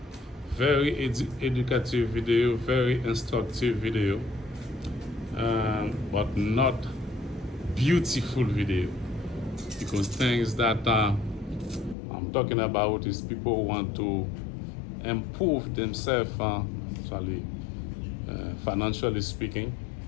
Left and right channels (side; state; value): right; drops out; at 12.0 s